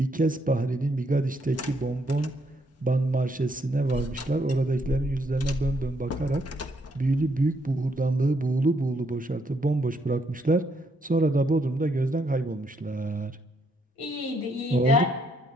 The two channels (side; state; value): both; normal; correlation 0.73